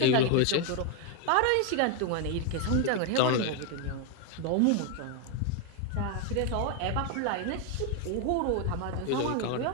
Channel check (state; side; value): different; both; correlation 0.01